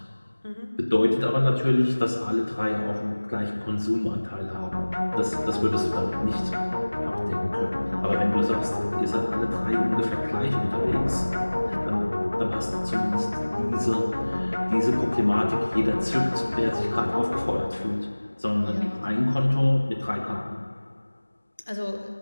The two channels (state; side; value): inverted; both; correlation -1.00